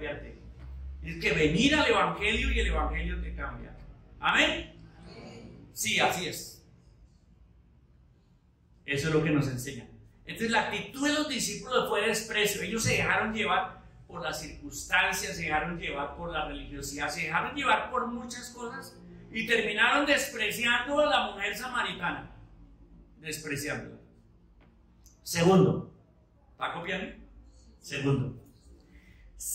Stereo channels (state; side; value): identical; both; correlation 1.00